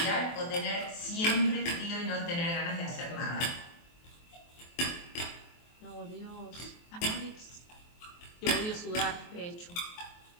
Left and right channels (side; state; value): right; late; 23 ms